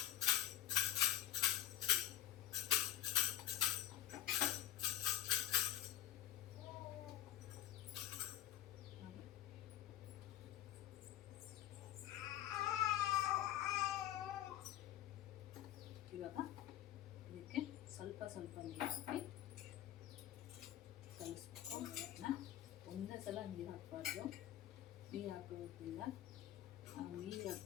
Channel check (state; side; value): quieter; right; 12.8 dB